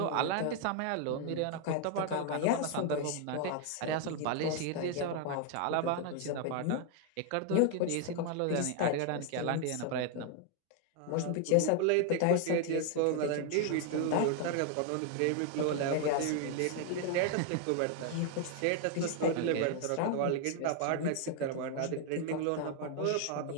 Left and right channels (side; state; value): both; different; correlation 0.00